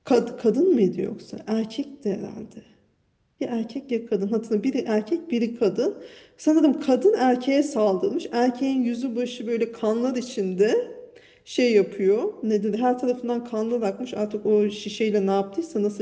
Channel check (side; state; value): both; identical; correlation 1.00